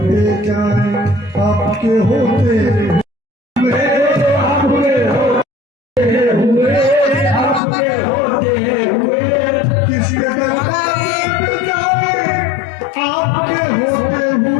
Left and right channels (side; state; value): right; drops out; at 7.6 s